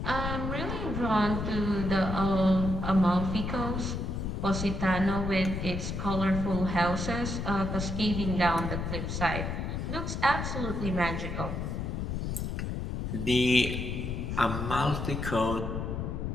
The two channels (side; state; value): left; noise; rumble, 3 dB below the sound